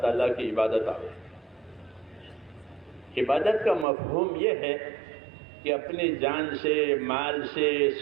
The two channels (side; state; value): left; drops out; at 3.9 s